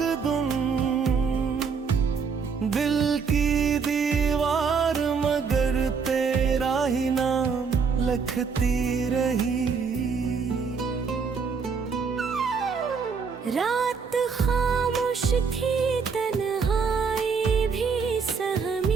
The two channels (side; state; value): left; quieter; 5.6 dB